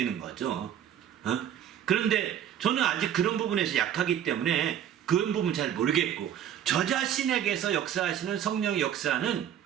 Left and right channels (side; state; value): left; quieter; 10.0 dB